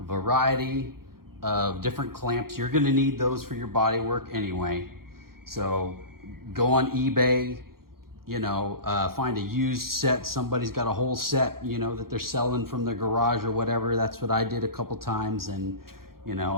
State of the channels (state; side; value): late; left; 0.93 ms